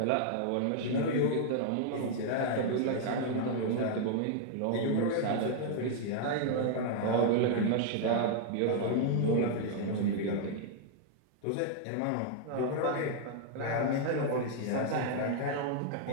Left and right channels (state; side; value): different; both; correlation -0.01